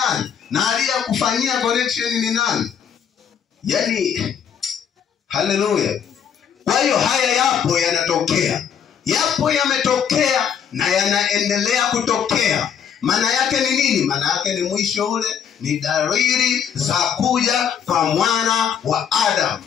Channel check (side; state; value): right; quieter; 8.0 dB